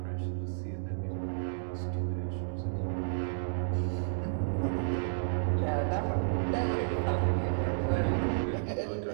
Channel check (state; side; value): silent; left; digital silence